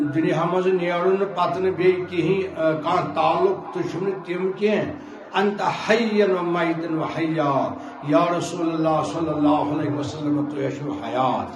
دنیا مز نیرن پتہ بی کہیں کان تعلق تو تم کی انت حین و میتن و حیا یا رسول اللہ صلی اللہ علیہ وسلم تو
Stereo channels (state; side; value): identical; both; correlation 1.00